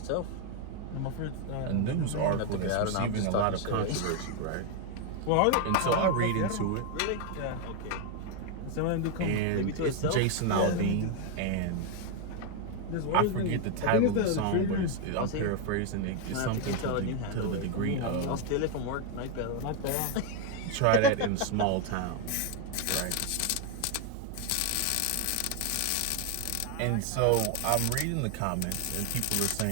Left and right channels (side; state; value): both; different; correlation 0.01